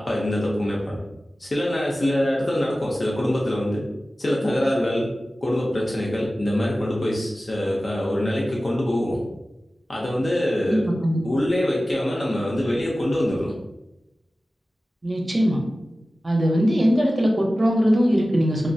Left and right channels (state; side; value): normal; both; correlation 0.96